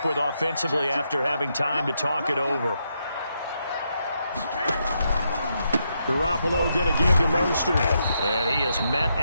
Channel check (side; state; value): both; inverted; correlation -0.80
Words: with offensively after having time to talk it over. Garoppolo going to give to Mostert. And he is met